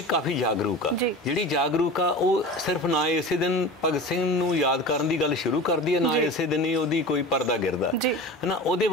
ਕਾਫੀ ਜਾਗਰੂਕ ਆ, ਜਿਹੜੀ ਜਾਗਰੂਕ ਆ ਉਹ ਸਿਰਫ ਨਾ ਇਸੇ ਦਿਨ ਭਗਤ ਸਿੰਘ ਨੂੰ ਯਾਦ ਕਰਨ ਦੀ ਗੱਲ ਸ਼ੁਰੂ ਕਰਦੀ ਹੈ, ਨਾ ਇਸੇ ਦਿਨ ਹੀ ਉਹਦੀ ਕੋਈ ਪਰਦਾ ਗਿਰਦਾ ਹੈ ਨਾ।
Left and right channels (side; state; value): both; normal; correlation 0.33